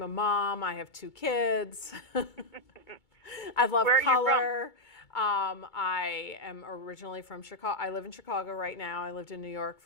a mom. I have 2 kids. I love Where are you color. I am originally from Chicago. I live in Chicago right now. I lived in New York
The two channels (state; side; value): late; right; 2.2 ms